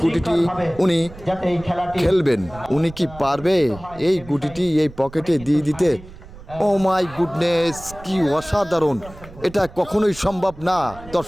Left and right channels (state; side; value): noise; right; rumble, 18 dB below the sound